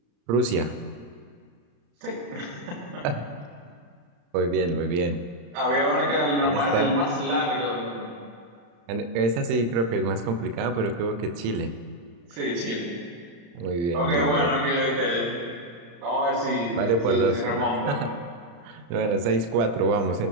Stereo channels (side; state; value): left; late; 35 ms